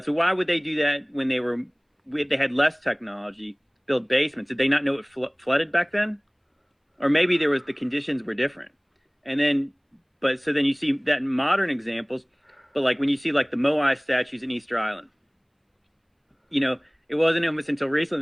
So why would they do that when they had less technology, build basements? Did they not know it flooded back then? Or maybe the conditions were different. And then, so then you see that in modern examples, but like when you see like the Moai statues in Easter Island, you know, it wasn't almost until recently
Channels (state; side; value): identical; both; correlation 1.00